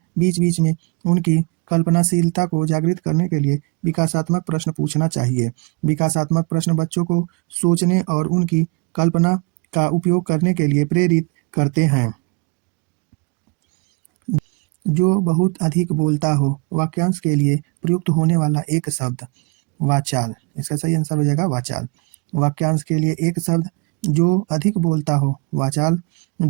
बीच बीच में उनकी कल्पनाशीलता को जागृत करने के लिए विकासात्मक प्रश्न पूछना चाहिए। विकासात्मक प्रश्न बच्चों को सोचने और उनकी कल्पना का उपयोग करने के लिए प्रेरित करते हैं। जो बहुत अधिक बोलता हो, वाक्यांश के लिए प्रयुक्त होने वाला एक शब्द वाचाल। इसका सही आंसर हो जाएगा वाचाल। वाक्यांश के लिए एक शब्द जो अधिक बोलता हो वाचाल,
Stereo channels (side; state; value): left; quieter; 28.7 dB